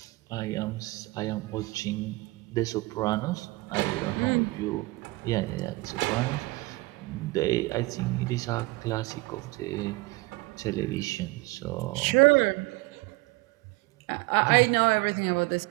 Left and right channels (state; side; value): quieter; left; 22.7 dB